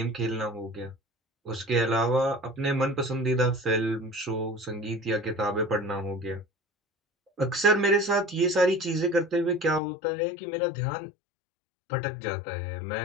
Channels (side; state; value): right; drops out; at 9.8 s